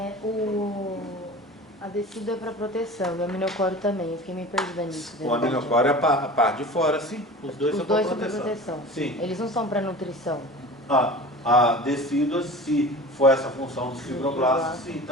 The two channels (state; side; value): normal; both; correlation 0.37